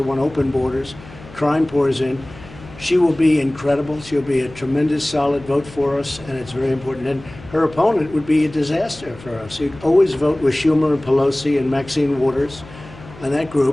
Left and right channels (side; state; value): left; noise; hum, 19 dB below the sound